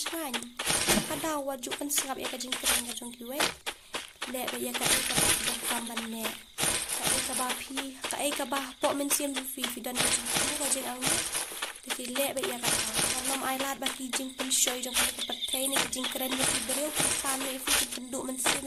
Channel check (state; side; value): identical; both; correlation 1.00